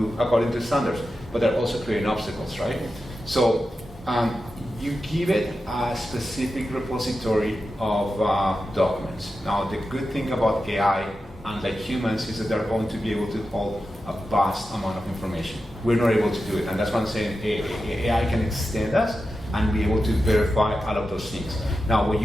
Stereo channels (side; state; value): both; normal; correlation 0.91